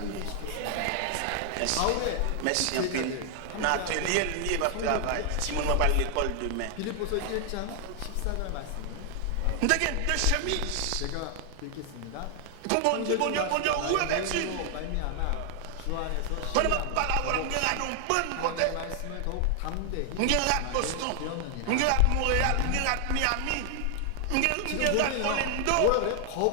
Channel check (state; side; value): different; both; correlation 0.00